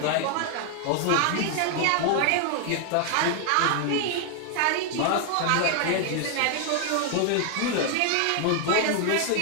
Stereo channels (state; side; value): different; both; correlation 0.00